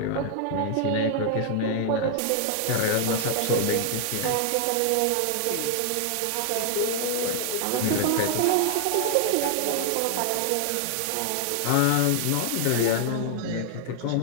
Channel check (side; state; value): both; different; correlation 0.00